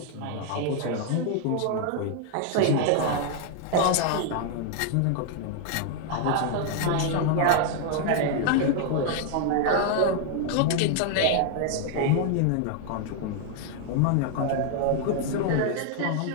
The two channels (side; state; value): both; different; correlation 0.00